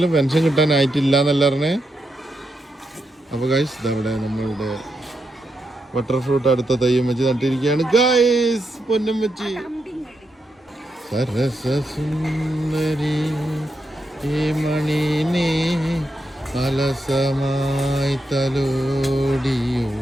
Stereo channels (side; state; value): both; normal; correlation 0.83